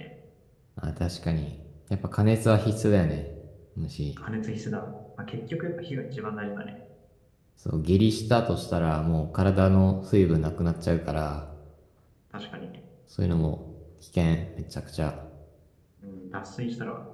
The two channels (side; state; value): both; identical; correlation 1.00